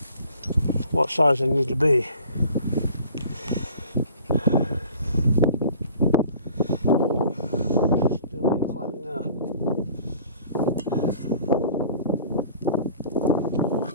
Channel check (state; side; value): inverted; both; correlation -0.49